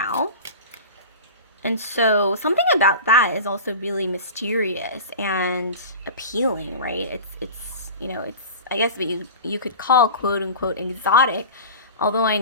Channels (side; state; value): both; inverted; correlation -0.33